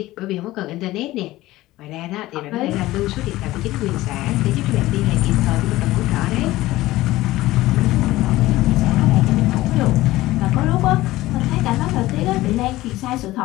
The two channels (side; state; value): right; quieter; 17.2 dB